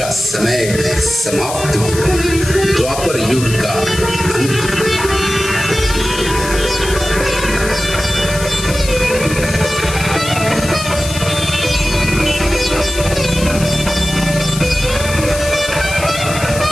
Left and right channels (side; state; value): left; noise; hiss, 9 dB below the sound